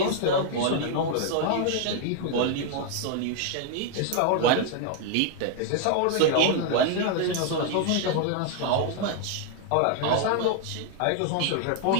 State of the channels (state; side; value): different; both; correlation 0.00